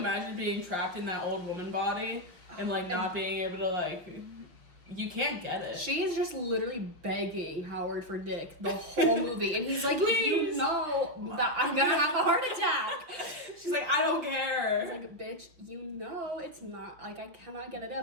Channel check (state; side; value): late; left; 5.5 ms